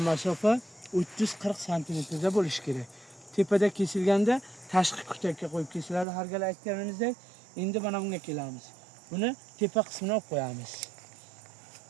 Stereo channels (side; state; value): left; drops out; at 6.1 s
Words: masofa 30-40 santimetrda bo'lishi kerak. Tepada kesilganda tashqi kutakka qo'yib kesiladi. Har gal aytganimizdek, endi mana bunga kelamiz. Buni tepa qismini olib qo'yamiz.